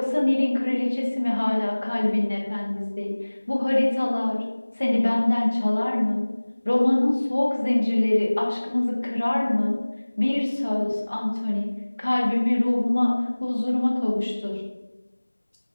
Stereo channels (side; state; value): both; inverted; correlation -1.00